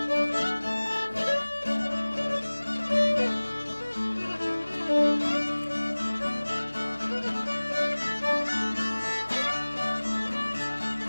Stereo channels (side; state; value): both; inverted; correlation -1.00